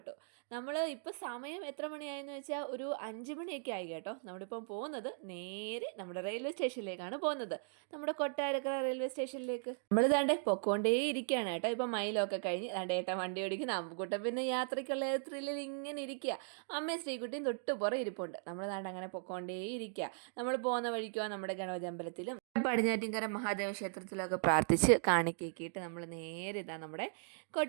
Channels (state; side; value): silent; left; digital silence